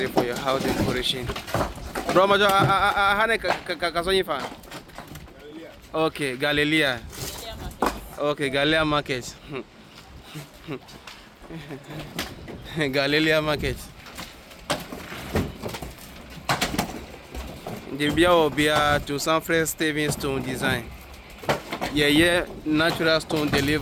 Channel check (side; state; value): both; identical; correlation 1.00